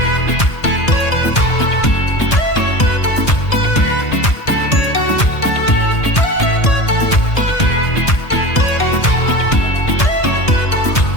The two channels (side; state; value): right; late; 1.6 ms